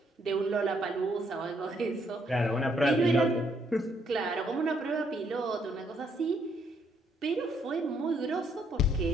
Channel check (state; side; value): normal; both; correlation 0.71